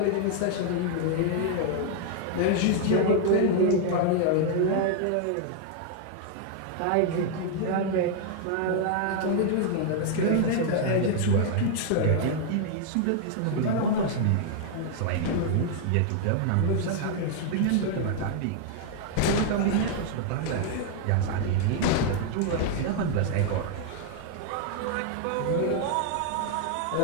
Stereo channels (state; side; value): different; both; correlation 0.00